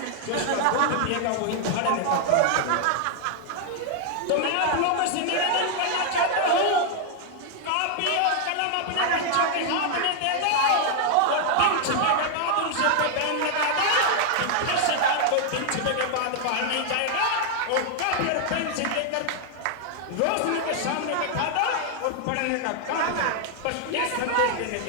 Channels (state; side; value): different; both; correlation 0.00